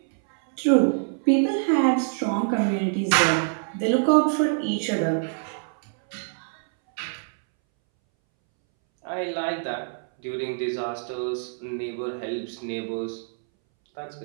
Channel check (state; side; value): silent; left; 62 dB below the other